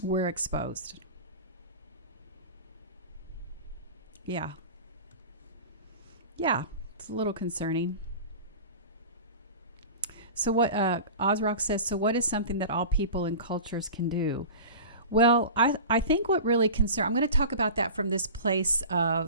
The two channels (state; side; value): inverted; both; correlation -0.35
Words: we're exposed. Yeah. Yeah, it's a little concerning. So what Ozrock says, so what is something that all people and cultures can do? Well, I think what really I'm going to talk about that from this place